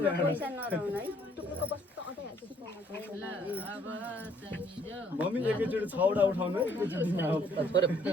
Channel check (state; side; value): normal; both; correlation 0.64